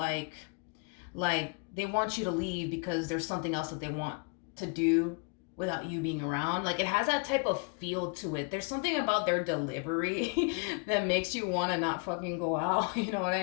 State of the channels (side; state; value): right; quieter; 35.0 dB